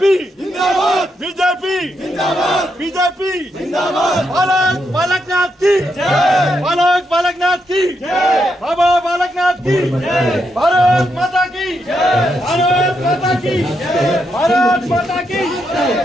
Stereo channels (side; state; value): both; normal; correlation 0.81